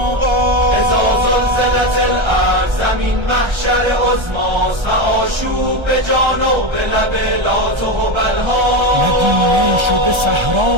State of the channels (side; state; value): left; late; 1.3 ms